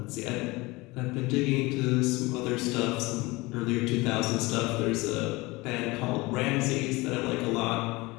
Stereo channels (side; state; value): right; quieter; 22.7 dB